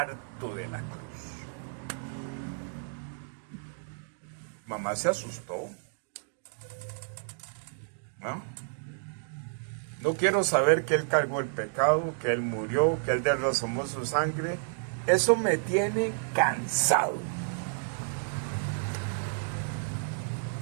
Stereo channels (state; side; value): silent; left; digital silence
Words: de la cruz. Mamá se asustó. No quiero saber que Él cargó el pecado, que Él murió, que Él derramó su sangre. Eso me tiene cansado.